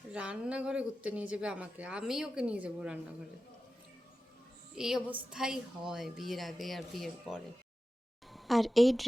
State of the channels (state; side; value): normal; both; correlation 0.94